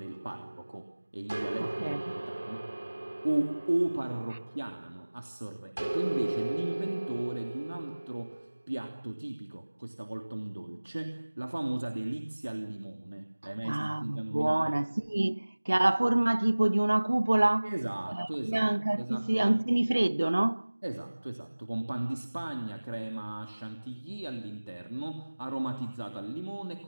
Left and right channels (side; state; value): both; inverted; correlation -1.00